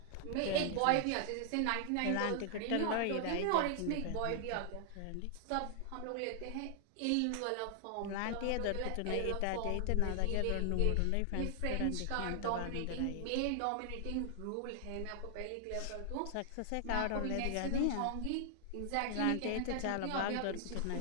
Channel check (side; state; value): both; different; correlation 0.00